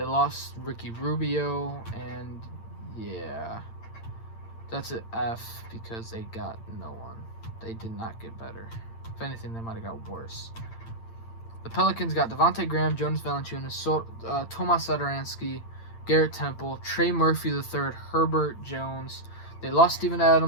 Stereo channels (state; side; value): late; right; 8.8 ms